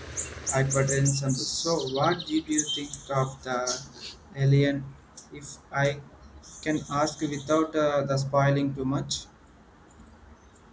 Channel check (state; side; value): identical; both; correlation 1.00